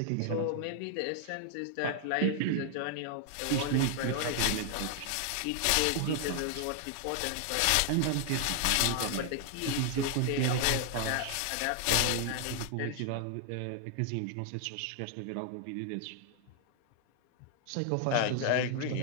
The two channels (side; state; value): both; different; correlation 0.00